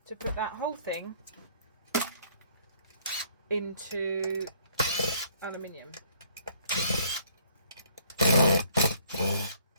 put that whole thing into aluminium.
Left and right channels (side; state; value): both; inverted; correlation -0.62